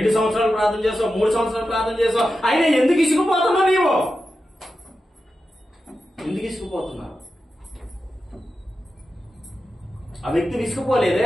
సంవత్సరాలు ప్రార్థన చేస్తావు, 3 సంవత్సరాలు ప్రార్థన చేస్తావు, అయినా ఎందుకు ఇసుకుపోతున్నావు? నీవు ఎందుకు ఇసుకుపోతున్నావు? ఆ వ్యక్తి విసుకుపోలేదే.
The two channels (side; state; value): both; normal; correlation 0.91